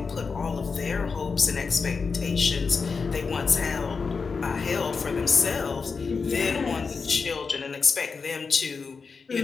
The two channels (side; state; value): right; quieter; 5.0 dB